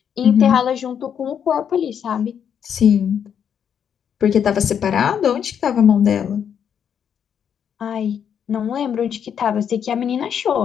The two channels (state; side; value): quieter; right; 8.2 dB